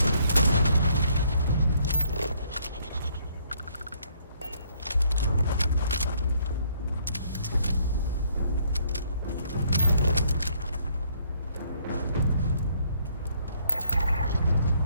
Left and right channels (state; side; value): inverted; both; correlation -0.67